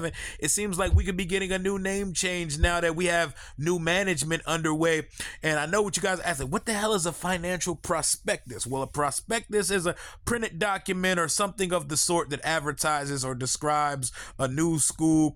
It seems like we could be getting a new name change now that we have new management underway. And I know what you guys are asking, what the hell is a financial prospectus? Well, a prospectus is a printed document or something of the sort that advertises or describes a new school,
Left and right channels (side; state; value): both; identical; correlation 1.00